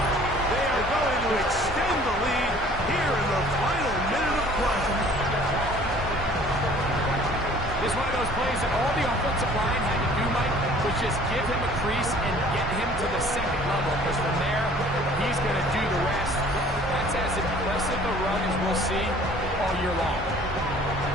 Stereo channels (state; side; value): normal; both; correlation 0.52